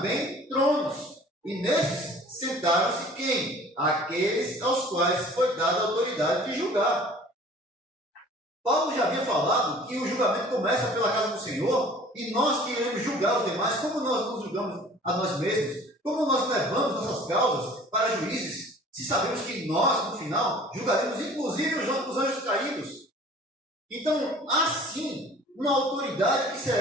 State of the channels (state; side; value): normal; both; correlation 0.48